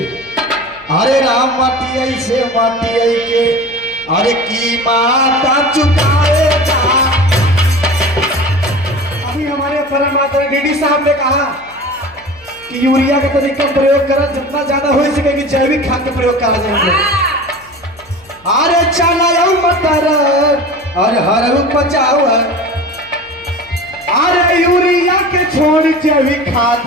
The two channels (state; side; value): noise; left; hum, 29 dB below the sound